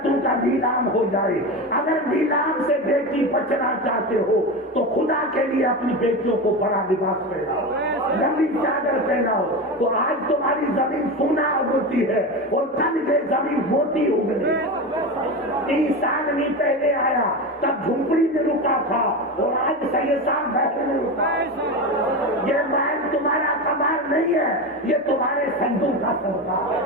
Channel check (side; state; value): both; normal; correlation 0.21